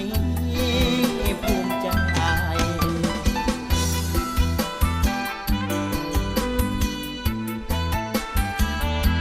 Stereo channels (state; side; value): identical; both; correlation 1.00